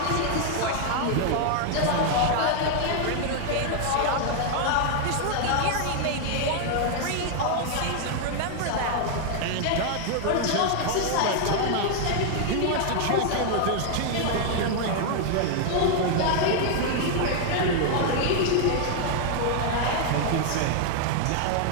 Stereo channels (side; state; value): both; different; correlation 0.00